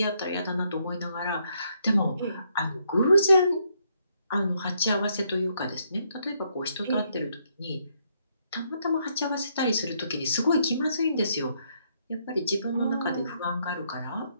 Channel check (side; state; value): both; inverted; correlation -0.74